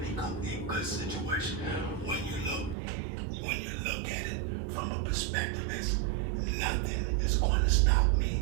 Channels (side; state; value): left; drops out; at 2.8 s